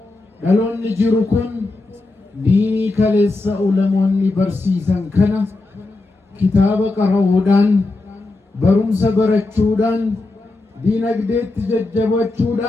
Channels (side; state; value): right; quieter; 3.2 dB